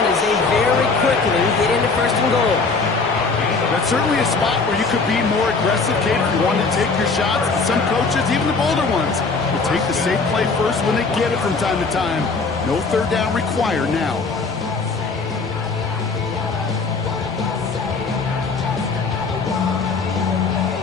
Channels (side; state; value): right; quieter; 4.3 dB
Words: as they very quickly get into first and goal. That's certainly a spot where you could be more aggressive, Kate, if you want to take your shots. Some coaches, even the bolder ones, will take the safe play first when they get it from time to time. No third down required now.